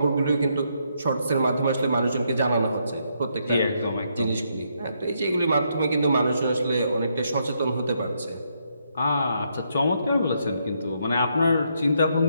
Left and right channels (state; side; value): inverted; both; correlation -0.76